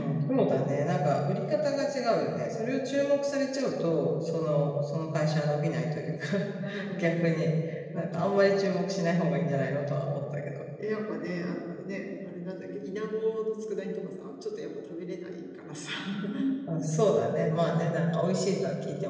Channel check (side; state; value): both; identical; correlation 1.00